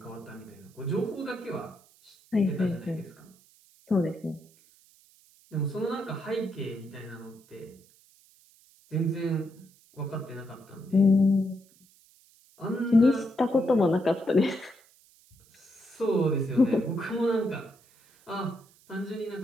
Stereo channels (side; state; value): right; noise; hiss, 29 dB below the sound